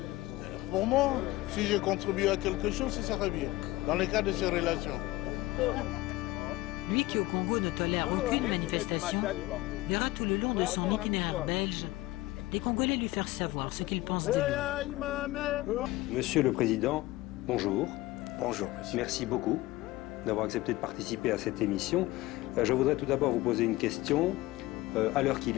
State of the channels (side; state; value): right; quieter; 18.7 dB